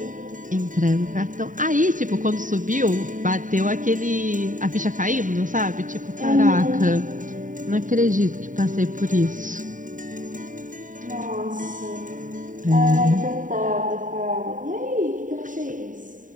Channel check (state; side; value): late; left; 0.38 ms